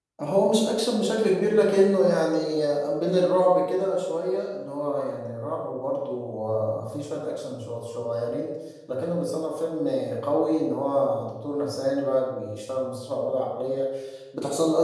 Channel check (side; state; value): both; identical; correlation 1.00